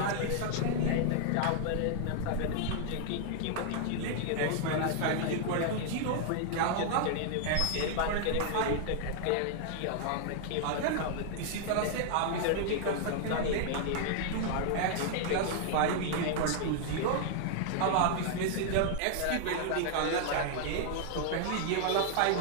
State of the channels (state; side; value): different; both; correlation 0.00